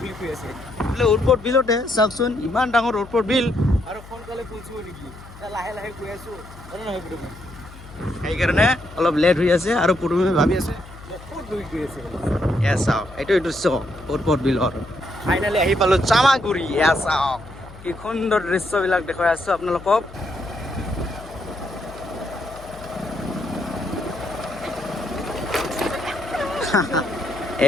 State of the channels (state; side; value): noise; left; hum, 18 dB below the sound